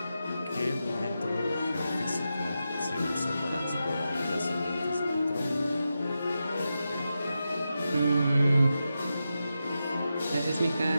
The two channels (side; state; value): both; inverted; correlation -0.89